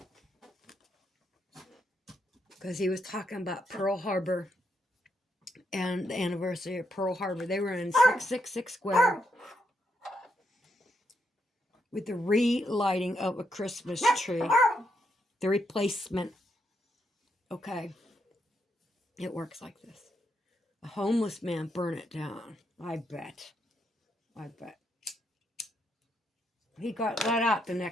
Because he was talking about Pearl Harbor and the anniversary of Pearl Harbor. They were in 666 Square with the relighting of a Christmas tree. The replacement. Okay. It works like this. A homeless man burned it down. I bet. He got let out the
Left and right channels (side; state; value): both; normal; correlation 0.79